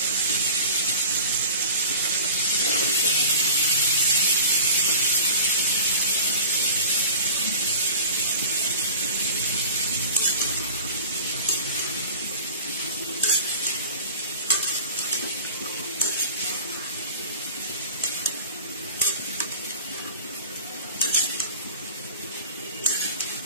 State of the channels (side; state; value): both; inverted; correlation -0.39